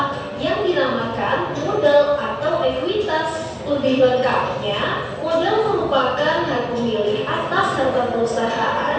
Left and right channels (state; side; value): identical; both; correlation 1.00